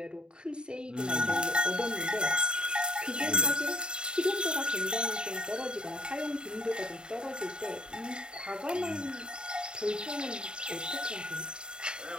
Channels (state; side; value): late; left; 0.050 ms